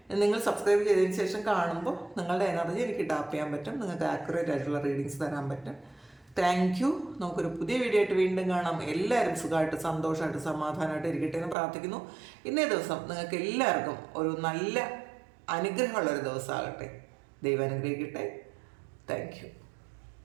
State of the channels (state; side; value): drops out; left; at 11.6 s